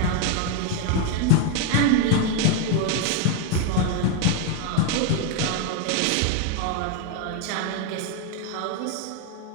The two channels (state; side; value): different; both; correlation 0.01